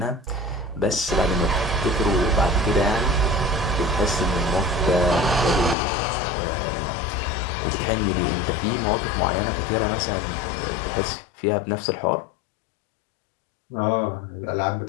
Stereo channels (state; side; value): drops out; right; at 5.8 s